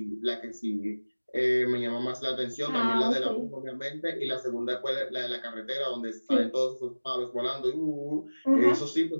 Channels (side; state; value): both; inverted; correlation -1.00